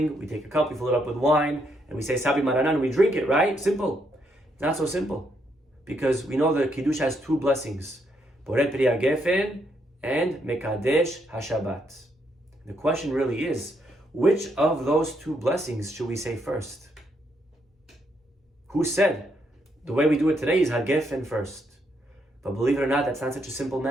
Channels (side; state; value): both; normal; correlation 0.76